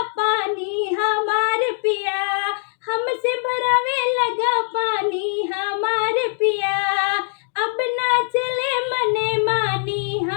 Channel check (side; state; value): right; silent; 57 dB below the other